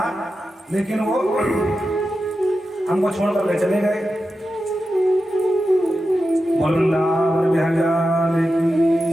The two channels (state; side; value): normal; both; correlation 0.91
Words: लेकिन वो हमको छोड़ कर चले गए। बोल वृंदावन विहंगा